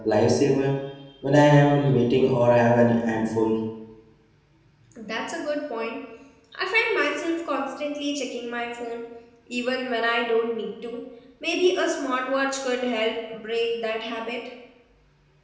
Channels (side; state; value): both; identical; correlation 1.00